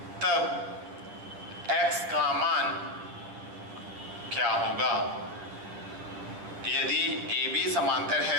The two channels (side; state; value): left; late; 9.8 ms